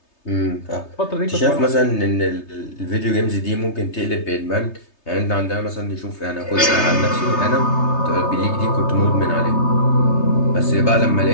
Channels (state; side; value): late; right; 3.3 ms